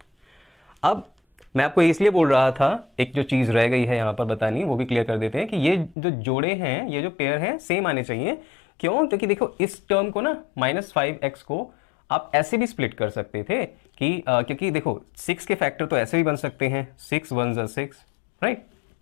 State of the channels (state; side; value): drops out; right; at 6.0 s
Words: अब मैं आपको इसलिए बोल रहा था, एक जो चीज़ रह गई है यहाँ पर बतानी, वो भी क्लियर कर देते हैं कि ये जो जोड़े हैं, ये जो पेयर हैं, सेम आने चाहिए। क्यों? क्योंकि देखो इस टर्म को ना -5x को आप ऐसे भी स्प्लिट कर सकते थे कि क्योंकि देखो 6 के फैक्टर तो ऐसे भी बन सकते हैं, 6 1 ज़ा 6, राइट,